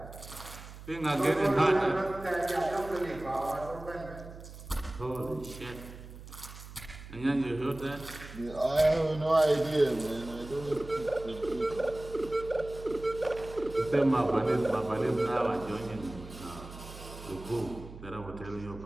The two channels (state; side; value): noise; right; hum, 15 dB below the sound